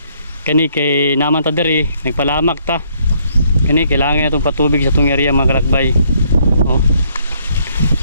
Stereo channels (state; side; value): inverted; both; correlation -0.68